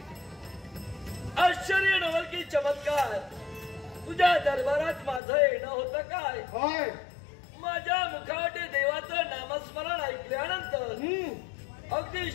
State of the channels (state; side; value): drops out; right; at 5.2 s